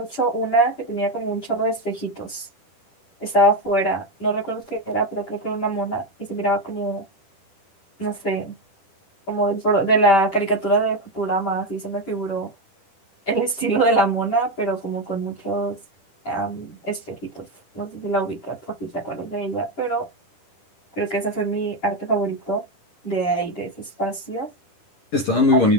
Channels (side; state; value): right; late; 10 ms